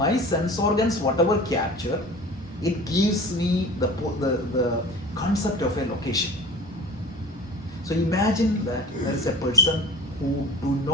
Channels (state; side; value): normal; both; correlation 0.39